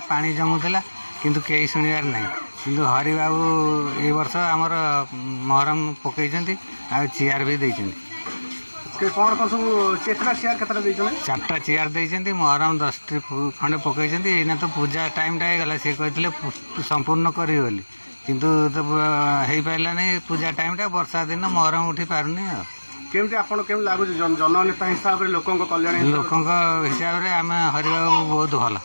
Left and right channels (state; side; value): inverted; both; correlation -1.00